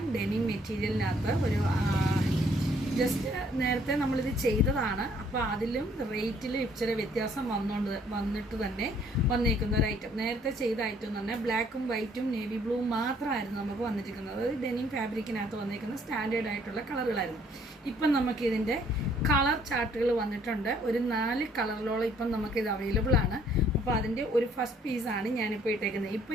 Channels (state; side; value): normal; both; correlation 0.63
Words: ഡെനിം മെറ്റീരിയലിനകത്ത് ഒരു ജസ്റ്റ് നേരത്തെ നമ്മളിത് ചെയ്തതാണ്. അപ്പോൾ അതിലും റേറ്റിലും ഇച്ചിരി വ്യത്യാസം വന്നിട്ട് തന്നെ വന്നിരിക്കുന്ന ഒരു ഐറ്റം. നേരത്തെ ചെയ്ത ഐറ്റം എന്ന് പറഞ്ഞാൽ ബ്ലാക്കും വൈറ്റും നേവി ബ്ലൂവും മാത്രമായിരുന്നു നമുക്ക് വന്നിരിക്കുന്നത്. അത് ഡെനിം ഫാബ്രിക്കിനകത്ത് വന്നിരിക്കുന്ന സ്റ്റാൻഡേർഡ് ആയിട്ടുള്ള കളറുകളായിരുന്നു. ഇപ്പം നമുക്കിതിൻ്റെ കളർ ചാർട്ടുകൾ വന്നിട്ടുണ്ട്. ഒരു 4 കളറിലോളം ഇപ്പം നമുക്കിത് അവൈലബിൾ ആണ്. അപ്പോൾ അതിൻ്റെ ഒരു ഫസ്റ്റ് പീസാണ് ഞാനിപ്പോൾ ഇട്ടേക്കുന്നത്.